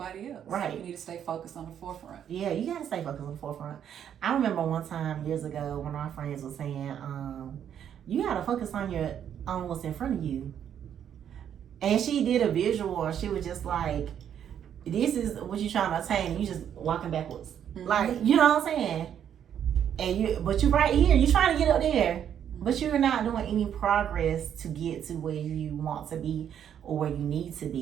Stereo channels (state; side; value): quieter; left; 9.2 dB